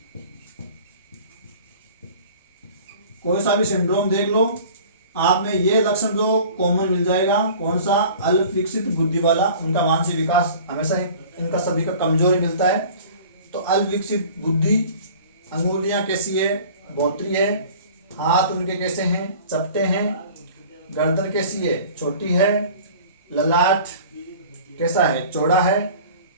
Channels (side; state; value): both; inverted; correlation -0.45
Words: कोई सा भी सिंड्रोम देख लो, आप में ये लक्षण जो कॉमन मिल जाएगा। कौन सा? अल्प विकसित बुद्धि वाला, उनका मानसिक विकास हमेशा इनका सभी का कमजोर मिलता है। तो अल्प विकसित बुद्धि, अंगुलियां कैसी है? बोतरी है। हाथ उनके कैसे हैं? चपटे हैं। गर्दन कैसी है? छोटी है। ललाट कैसा है? चौड़ा है।